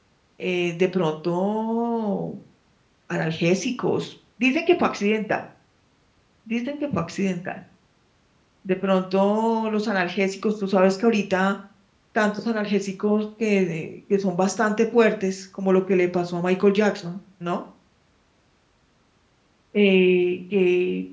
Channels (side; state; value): both; identical; correlation 1.00